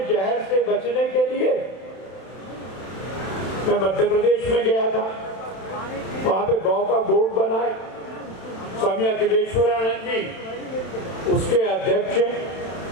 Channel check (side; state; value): right; late; 31 ms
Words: जहर से बचने के लिए। मैं मध्य प्रदेश में गया था, वहां पे गौ का बोर्ड बना है, स्वामी अखिलेश्वरानंद जी उसके अध्यक्ष हैं।